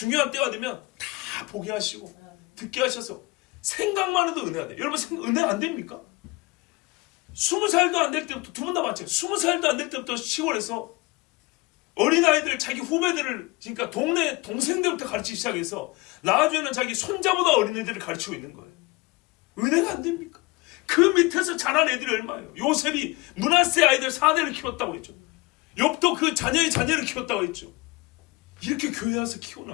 때가 되면 다 보게 하시고 듣게 하셔서 생각만 해도 은혜가 돼요. 여러분 은혜 안 됩니까? 20살도 안 될 때부터, 두 분 다 마찬가지예요. 20살도 안 될 때부터 시골에서 어린아이들, 자기 후배들을, 그러니까 동네 동생들부터 가르치기 시작해서 나중에는 자기 손자보다 어린애들을 가르치고 있는 거예요. 은혜가 안 됩니까? 그 밑에서 자란 애들이 얼마예요? 요셉이 므낫세 아이들 4대를 키웠다고 했죠. 욥도 그 자녀의 자녀를 키웠다고 했죠. 이렇게 교회 와서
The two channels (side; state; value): right; quieter; 23.8 dB